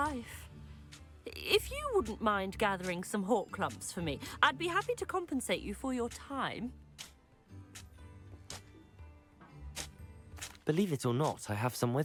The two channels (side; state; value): both; identical; correlation 1.00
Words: If you wouldn't mind gathering some hawk lumps for me, I'd be happy to compensate you for your time. Believe it or not, I have some